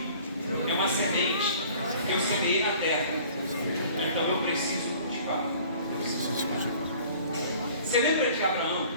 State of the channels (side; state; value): both; inverted; correlation -0.50